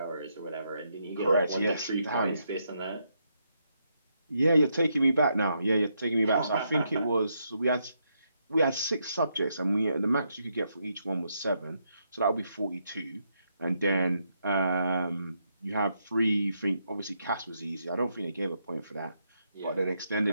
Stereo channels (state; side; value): inverted; both; correlation -0.79